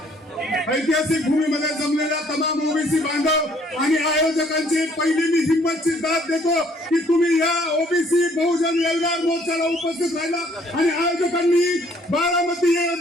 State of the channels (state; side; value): normal; both; correlation 0.62